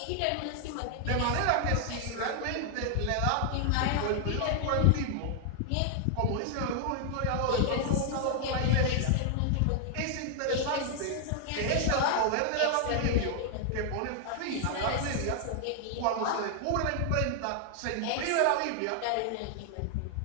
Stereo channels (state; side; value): different; both; correlation 0.00